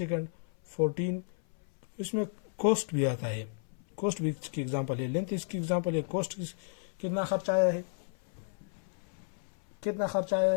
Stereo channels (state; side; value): silent; right; 56 dB below the other